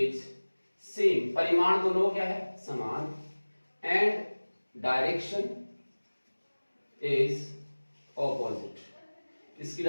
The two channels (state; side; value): inverted; both; correlation -1.00